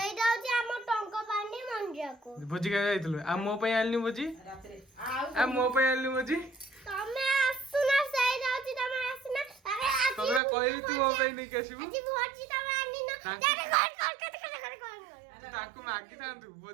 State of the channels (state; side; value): drops out; left; at 10.4 s